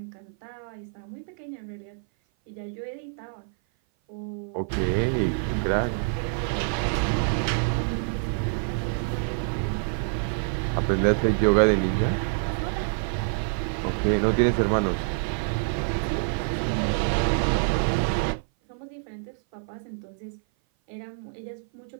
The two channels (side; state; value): left; silent; 56 dB below the other